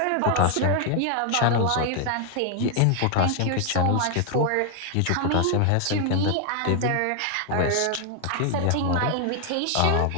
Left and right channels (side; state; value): both; different; correlation 0.01